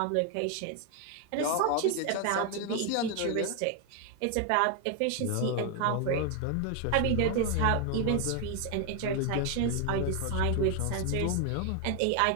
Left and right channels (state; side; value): different; both; correlation 0.01